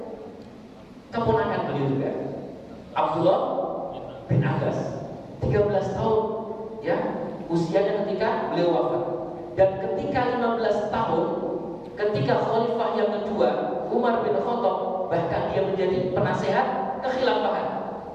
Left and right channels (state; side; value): identical; both; correlation 1.00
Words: Keponakan beliau juga, Abdullah bin Abbas. 13 tahun ya usianya ketika beliau wafat. Dan ketika 15 tahun, ketika khalifah yang kedua Umar bin Khattab, bahkan dia menjadi penasehat kekhilafahan.